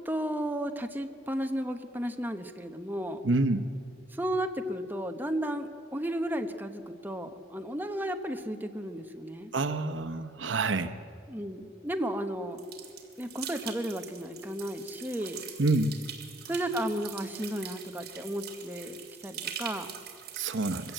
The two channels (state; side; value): normal; both; correlation 0.66